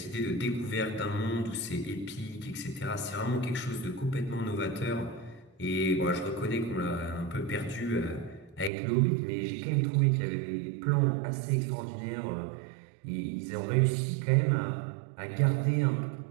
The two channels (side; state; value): left; drops out; at 8.7 s